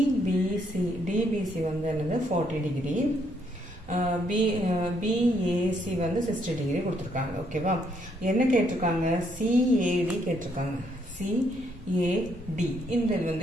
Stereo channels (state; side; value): normal; both; correlation 0.71